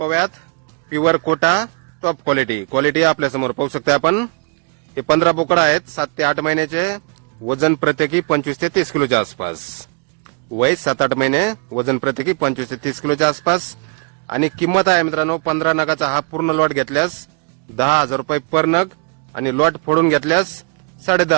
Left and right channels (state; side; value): quieter; left; 34.7 dB